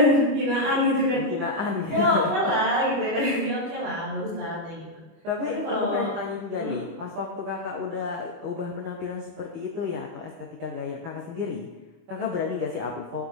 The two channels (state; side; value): late; left; 25 ms